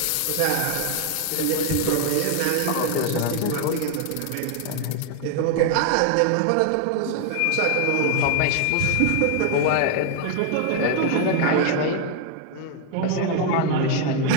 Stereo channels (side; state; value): both; different; correlation 0.00